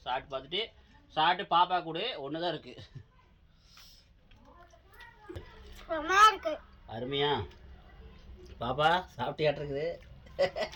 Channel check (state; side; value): identical; both; correlation 1.00